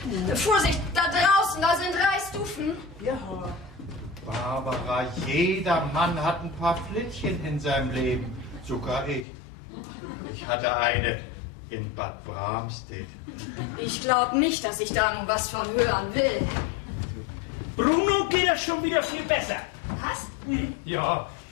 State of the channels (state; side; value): drops out; right; at 9.2 s